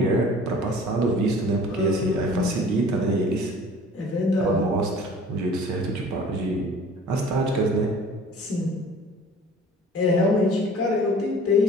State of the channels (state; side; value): normal; both; correlation 0.47